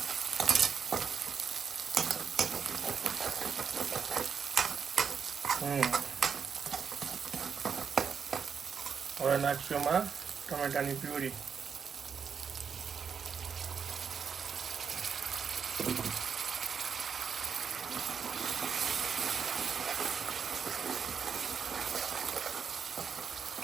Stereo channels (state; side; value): quieter; left; 6.6 dB